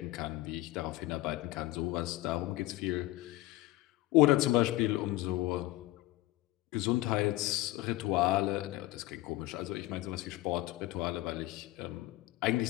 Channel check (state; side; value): quieter; right; 17.9 dB